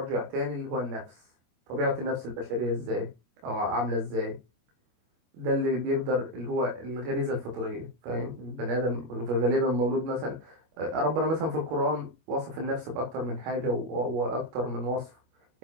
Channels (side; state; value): left; late; 25 ms